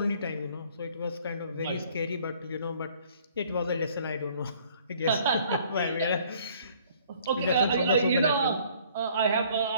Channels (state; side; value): inverted; both; correlation -0.58